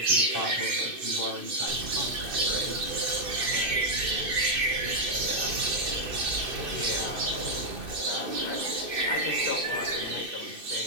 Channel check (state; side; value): late; left; 2.6 ms